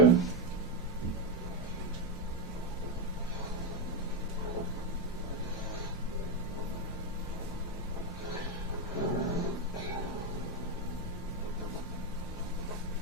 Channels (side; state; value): both; normal; correlation 0.07